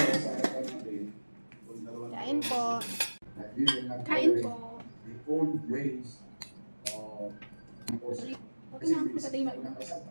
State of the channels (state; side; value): inverted; both; correlation -1.00